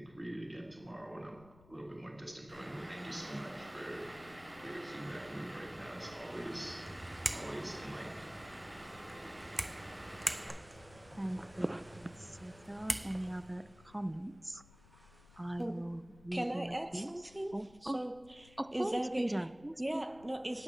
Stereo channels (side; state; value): left; noise; rumble, 22 dB below the sound